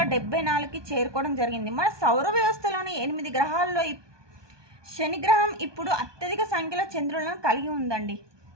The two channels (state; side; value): late; left; 1.2 ms